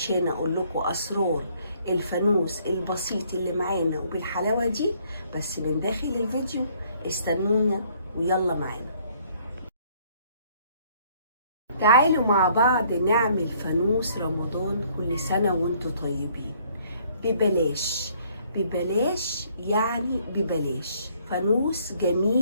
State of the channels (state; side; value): inverted; both; correlation -0.63